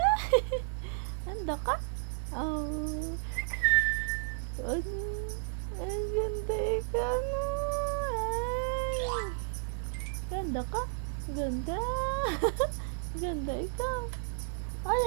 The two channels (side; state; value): left; silent; 56 dB below the other